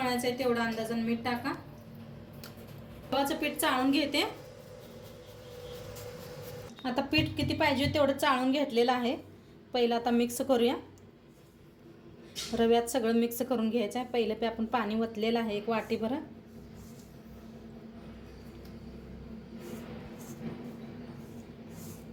आहे तेवढा अंदाजाने मीठ टाका। गव्हाचं पीठ चाळून घेते। आता पीठ किती पाहिजे तेवढं चाळून घेतलेलं आहे। पहिलं आता मिक्स करूया, रव्यात सगळं मिक्स करून घ्यायचं आहे। पहिलं आपण पाणी वतलेलं आहे एक वाटीभर।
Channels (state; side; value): identical; both; correlation 1.00